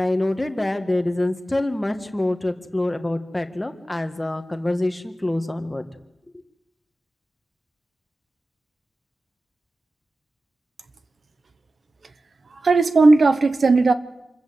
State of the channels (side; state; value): both; normal; correlation 0.95